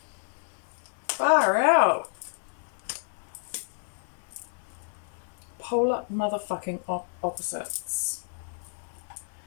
Far out. Polar motherfucking opposites.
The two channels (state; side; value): silent; right; digital silence